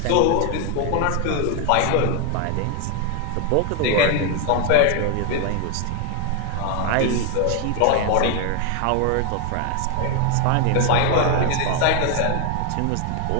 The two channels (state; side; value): different; both; correlation 0.01